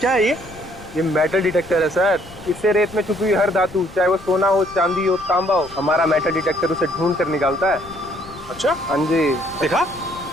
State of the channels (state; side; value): noise; left; rumble, 20 dB below the sound